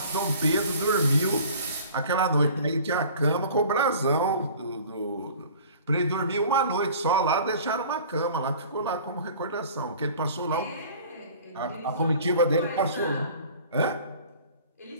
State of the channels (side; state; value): both; inverted; correlation -0.46